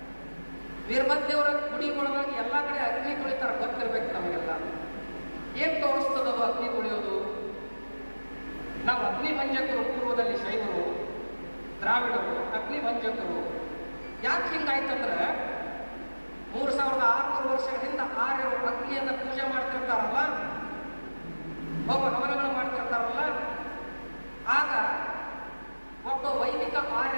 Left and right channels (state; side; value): inverted; both; correlation -1.00